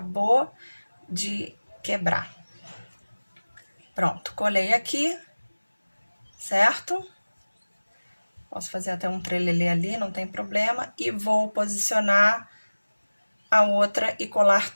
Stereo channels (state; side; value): inverted; both; correlation -1.00